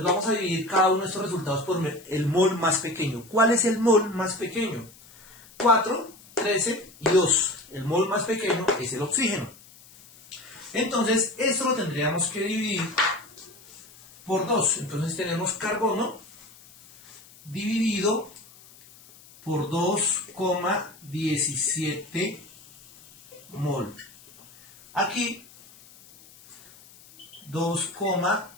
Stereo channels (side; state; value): left; noise; hiss, 23 dB below the sound